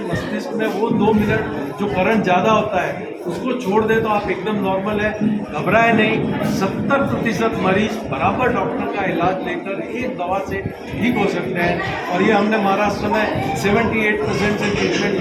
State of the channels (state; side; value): identical; both; correlation 1.00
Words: मस्तिष्क में वो 2 मिनट जो करंट ज़्यादा होता है उसको छोड़ दे तो आप एकदम नॉर्मल है। घबराए नहीं, 70% मरीज बराबर डॉक्टर का इलाज लेकर एक दवा से ठीक हो सकते हैं, और ये हमने महाराष्ट्र में 78% से ट्रीटमेंट